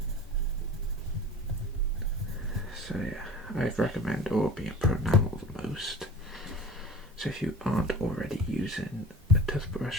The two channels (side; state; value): both; normal; correlation 0.42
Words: So yeah, I'd recommend Orby and Pronamel the most. So if you aren't already using a